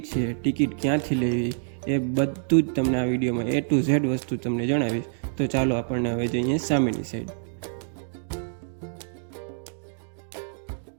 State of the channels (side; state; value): left; silent; digital silence